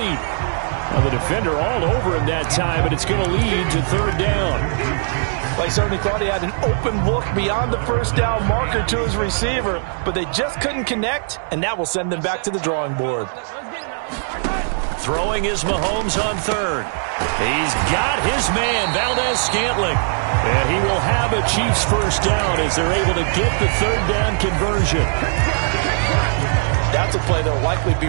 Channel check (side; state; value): left; silent; digital silence